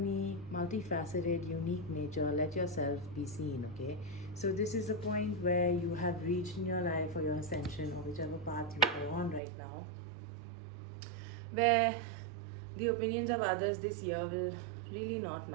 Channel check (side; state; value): left; drops out; at 9.4 s